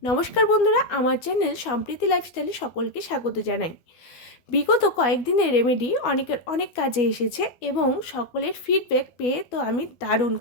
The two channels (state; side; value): late; right; 12 ms